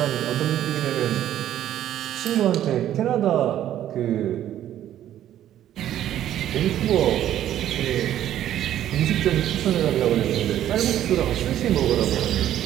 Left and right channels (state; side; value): quieter; left; 11.8 dB